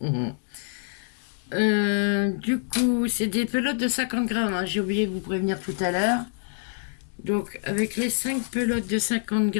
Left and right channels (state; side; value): silent; right; digital silence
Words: Du coup, c'est des pelotes de 50 grammes, hein. J'ai oublié de vous prévenir tout à l'heure. Donc avec les 5 pelotes de 50